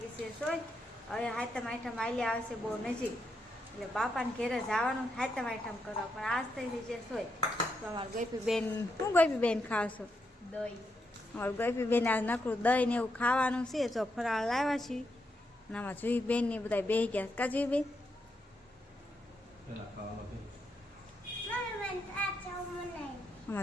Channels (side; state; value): both; normal; correlation 0.82